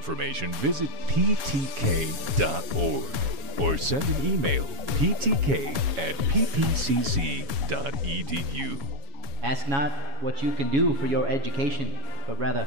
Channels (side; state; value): left; late; 7.2 ms